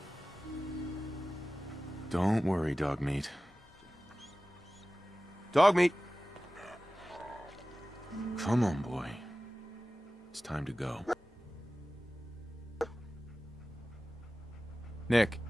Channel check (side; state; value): both; normal; correlation 0.96